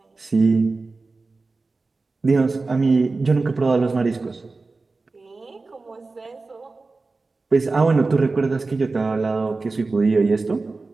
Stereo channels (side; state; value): left; quieter; 3.7 dB